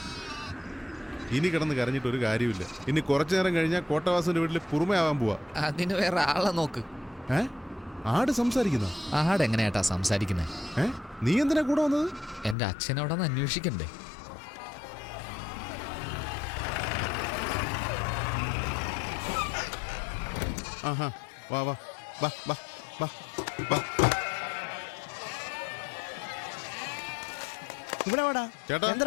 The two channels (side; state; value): right; drops out; at 12.6 s